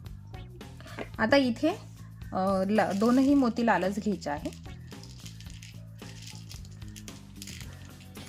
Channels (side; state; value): both; identical; correlation 1.00